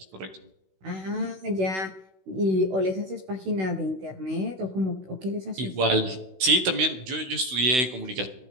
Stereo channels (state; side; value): late; left; 16 ms